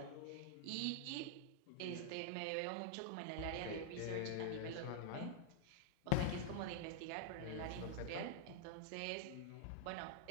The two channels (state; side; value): different; both; correlation -0.01